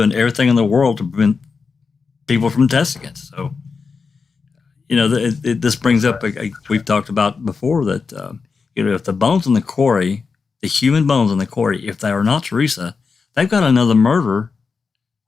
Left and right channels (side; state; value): right; quieter; 5.0 dB